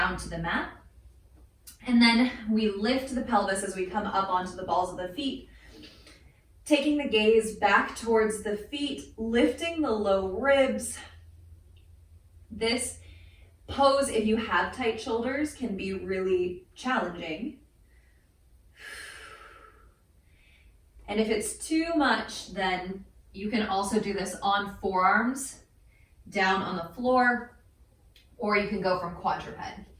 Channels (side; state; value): both; identical; correlation 1.00